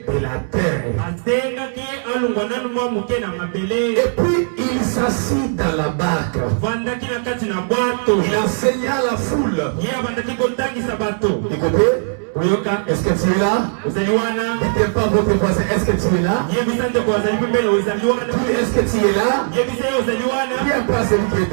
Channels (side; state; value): left; silent; 67 dB below the other